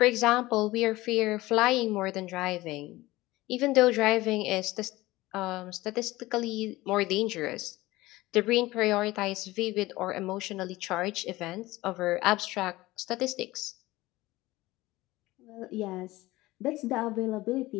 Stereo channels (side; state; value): right; quieter; 18.7 dB